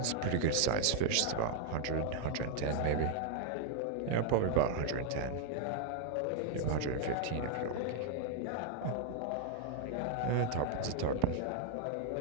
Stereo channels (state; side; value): different; both; correlation 0.00